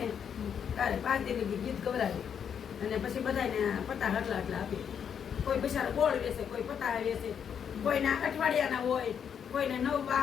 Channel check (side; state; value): right; quieter; 7.8 dB